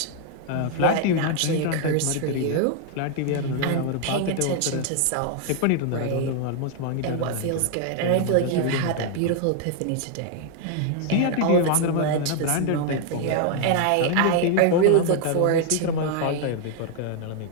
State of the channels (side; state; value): both; different; correlation 0.00